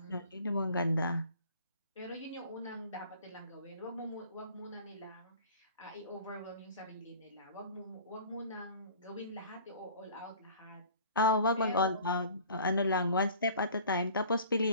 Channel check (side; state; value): both; inverted; correlation -0.47